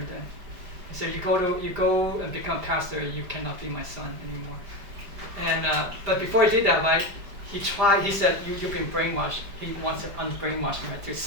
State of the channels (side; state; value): left; late; 5.0 ms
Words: then. He said, "You go and become pastor. You cannot be my son anymore." And but before he did that, right, he tried. He said, "You've been brainwashed." He wants to unbrainwash me, right, to